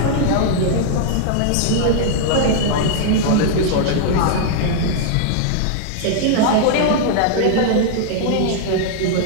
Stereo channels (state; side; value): different; both; correlation -0.01